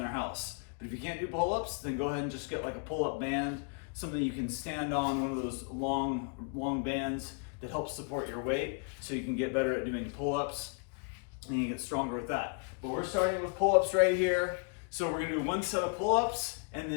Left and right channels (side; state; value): right; quieter; 39.4 dB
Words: house. But if you can't do pull-ups, then go ahead and just get like a pull-up band, something you can stand on, one of those long bands that helps support your weight, so you can get better at doing pull-ups. And you get stronger with that. But we're starting with pull-ups right here. So we're gonna do 1 set of pull-ups and